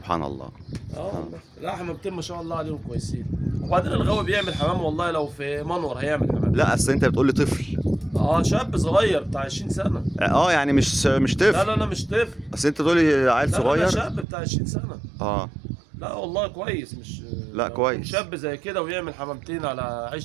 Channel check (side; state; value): left; drops out; at 14.2 s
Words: الله. لا حمامتين ما شاء الله عليهم كويسين. وبعدين الغاوي بيعمل حمام والله. لو في منور هيعمل حمام. لا اصل انت بتقول لي طفل. شاب صغير بتاع 20 سنه. يعني مش طفل. لا مش طفل. اصل انت بتقول لي عيل صغير. لا شاب بتاع 20 سنه. لا والله كويس. مش لا كويس. شاب زي كده ويعمل حمامتين على